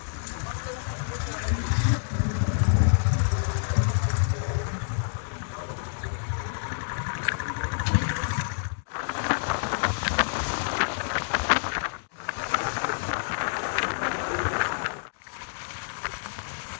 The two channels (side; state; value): right; silent; digital silence